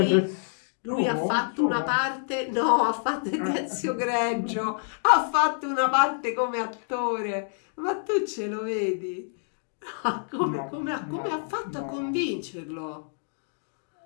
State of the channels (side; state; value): right; silent; digital silence